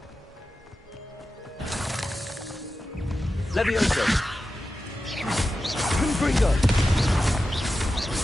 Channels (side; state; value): both; normal; correlation 0.92